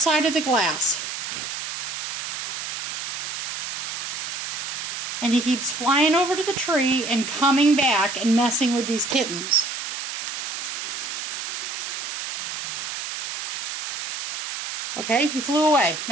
of the glass. And he keeps flying over to the tree and coming back and messing with these kittens. Okay, he flew away.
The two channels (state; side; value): noise; right; hiss, 5 dB below the sound